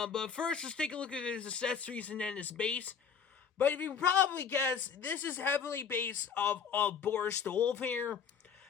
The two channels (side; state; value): right; quieter; 6.7 dB